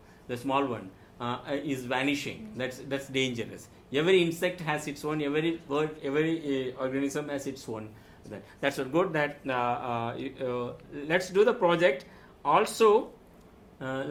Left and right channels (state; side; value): identical; both; correlation 1.00